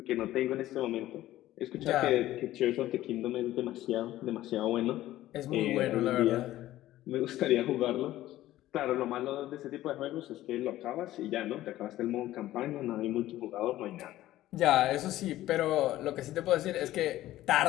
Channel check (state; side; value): quieter; right; 14.8 dB